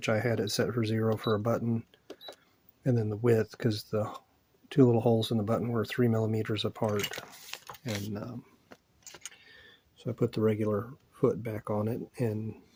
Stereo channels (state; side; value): identical; both; correlation 1.00